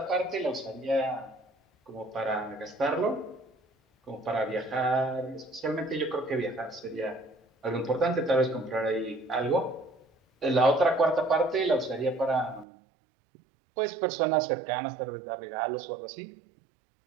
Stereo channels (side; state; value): left; drops out; at 12.7 s